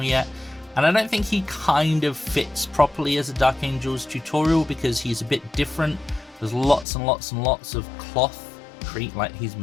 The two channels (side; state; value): right; drops out; at 6.9 s